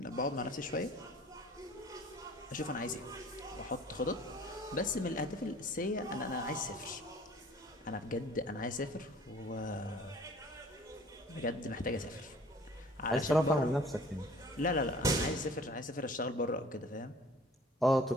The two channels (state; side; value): normal; both; correlation 0.50